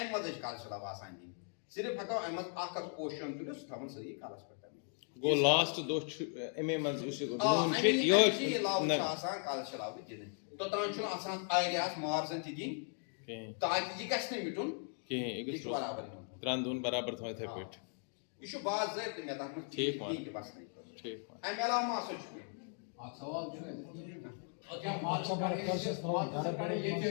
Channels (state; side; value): silent; right; 53 dB below the other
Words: منٛزٕے چھِ کلشہِ لو آسان دِنۍ صرف ہٮ۪کو امہِ منٛز اکھ پوشن تُلِتھ سُہ تھاوُن سٲری کلس پٮ۪ٹھ گوٚو لاسٹ دۄہ چھُ اَمے منٛز یُس لو چھُ آسان کلشہِ لو دِنہٕ توٚتام چھُنہٕ آسان ایریاہس مارزن تہِ دِنۍ تاکہِ یہِ گژھِ نہٕ مِٹُن کِہیٖنۍ یہِ چھُ برابر یِوان 3 دۄہن برابر تھاوٕنۍ یِتھٕے پٲٹھۍ یہِ چھُ باضٲبطہٕ مےٚ تتھ منٛز ٹھیٖک امہِ علاوٕ ما ہسا چھُ